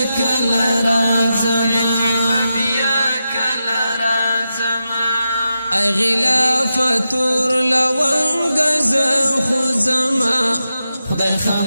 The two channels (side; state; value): both; inverted; correlation -0.89